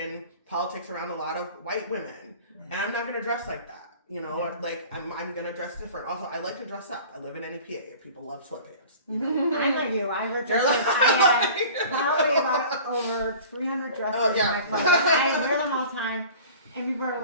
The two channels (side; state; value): both; inverted; correlation -0.43